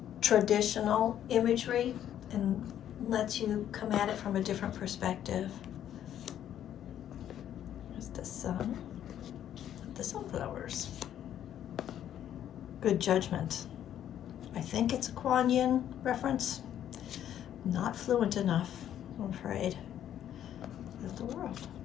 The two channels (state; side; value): quieter; right; 10.6 dB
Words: traditional imagery and lets you come at it from a different perspective. There's the sun, the sunflowers. Good judgment. I think it's a Kuan Yin reference. Not fluent enough, I'm afraid. Of the world.